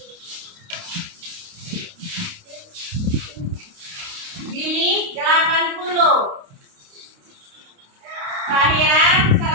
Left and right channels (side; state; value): left; late; 29 ms